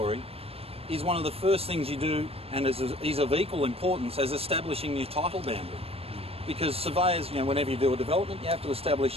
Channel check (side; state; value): left; late; 0.28 ms